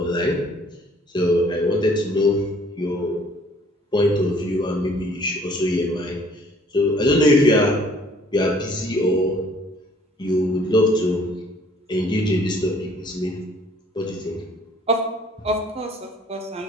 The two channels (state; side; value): normal; both; correlation 0.58